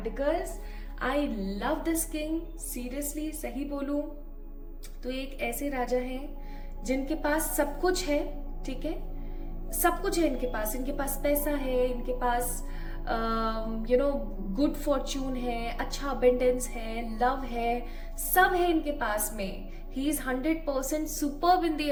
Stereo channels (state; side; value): identical; both; correlation 1.00